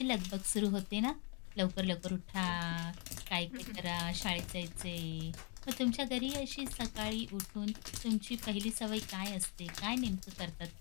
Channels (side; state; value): right; quieter; 36.2 dB